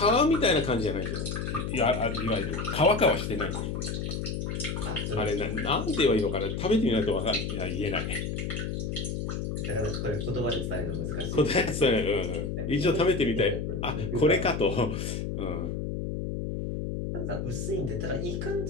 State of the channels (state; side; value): noise; left; hum, 3 dB below the sound